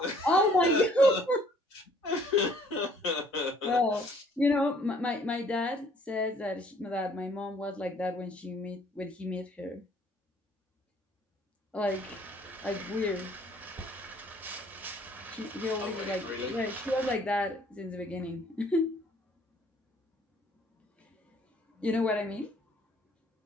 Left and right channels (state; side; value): normal; both; correlation 0.60